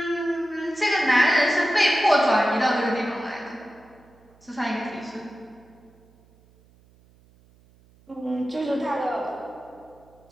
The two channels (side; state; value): right; noise; hum, 30 dB below the sound